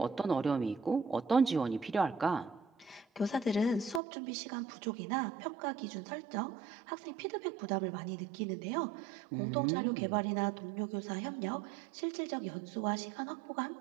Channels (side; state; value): left; drops out; at 4.0 s